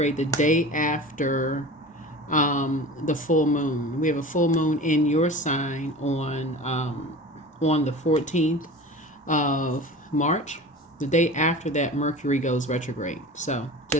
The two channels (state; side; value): normal; both; correlation 0.36